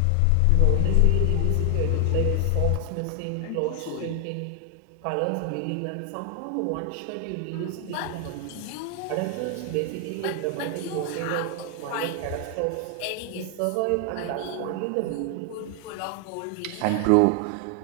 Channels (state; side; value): different; both; correlation 0.00